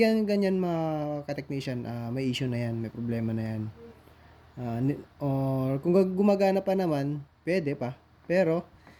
mga ka-technician, may issue na yan, may problema na yan. Or kung gumagana pa naman, pwede pa. Pero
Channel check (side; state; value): both; identical; correlation 1.00